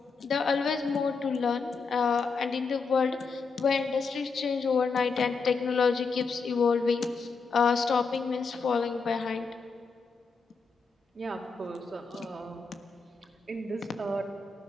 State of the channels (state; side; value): quieter; right; 4.8 dB